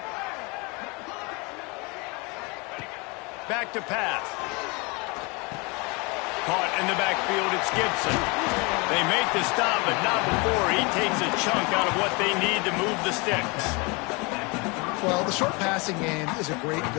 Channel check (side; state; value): right; quieter; 28.5 dB